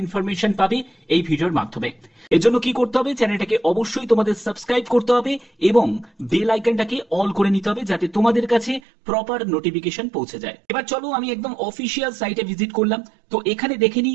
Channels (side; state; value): left; drops out; at 8.8 s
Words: ইনফরমেশন পাবে এই ভিডিওর মাধ্যমে। এর জন্য কি করতে হবে, চ্যানেলটাকে অবশ্যই তোমাদের সাবস্ক্রাইব করতে হবে এবং বেল আইকনটাকে অল করে নিতে হবে যাতে তোমাদের কাছে প্রপার নোটিফিকেশন পৌঁছে যায়। এবার চলো আমি একদম অফিসিয়াল সাইটে ভিজিট করলাম, তো এখানে দেখে